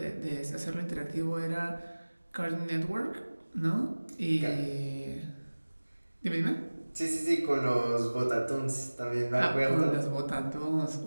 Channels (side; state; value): both; inverted; correlation -1.00